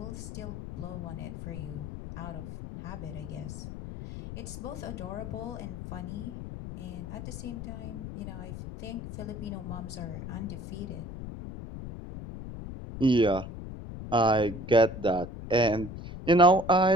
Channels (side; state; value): left; noise; rumble, 9 dB below the sound